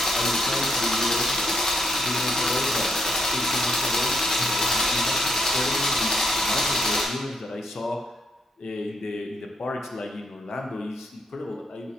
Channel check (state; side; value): normal; both; correlation 0.75